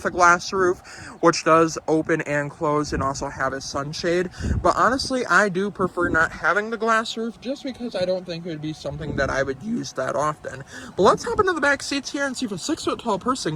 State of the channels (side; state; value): both; identical; correlation 1.00